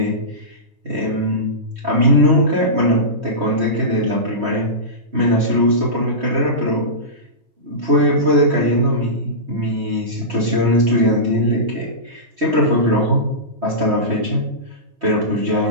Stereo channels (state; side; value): late; left; 3.2 ms